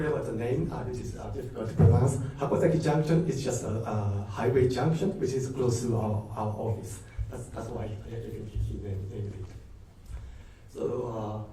about the name, which is difficult to pronounce. Hakozaki Junction is just a highway junction, which is close to our office. That's why he named it. So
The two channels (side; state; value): both; identical; correlation 1.00